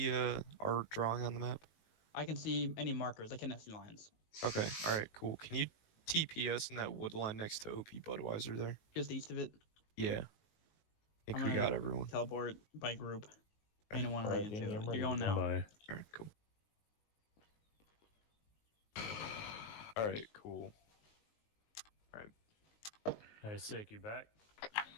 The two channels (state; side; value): late; right; 19 ms